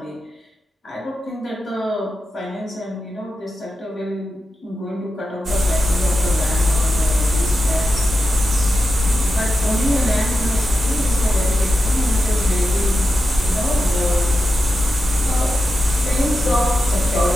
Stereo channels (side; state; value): both; normal; correlation 0.90